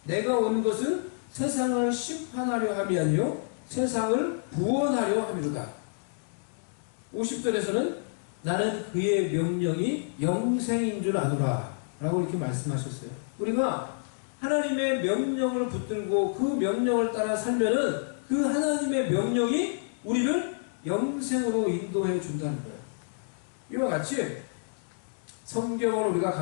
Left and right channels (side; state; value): right; silent; digital silence